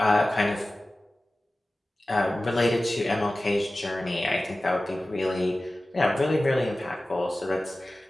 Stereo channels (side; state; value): both; normal; correlation 0.96